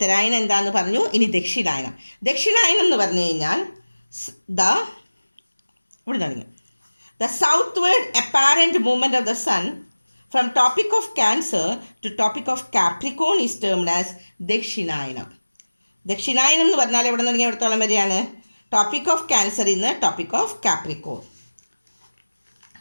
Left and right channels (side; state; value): both; inverted; correlation -1.00